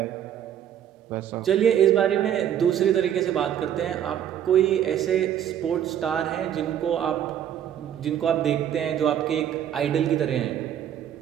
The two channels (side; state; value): left; quieter; 10.0 dB